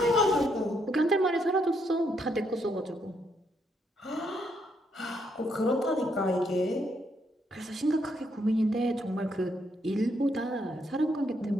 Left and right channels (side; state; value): both; normal; correlation 0.75